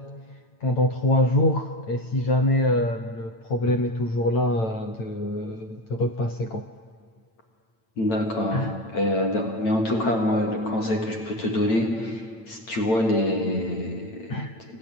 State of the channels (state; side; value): late; right; 9.0 ms